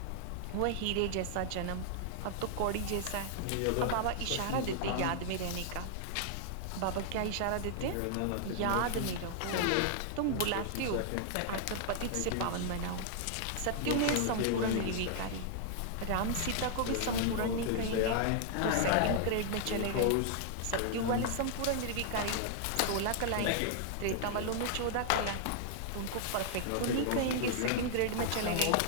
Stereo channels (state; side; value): different; both; correlation -0.01